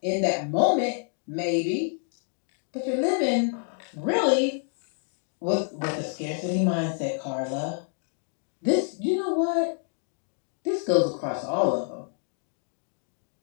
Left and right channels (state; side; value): silent; right; 59 dB below the other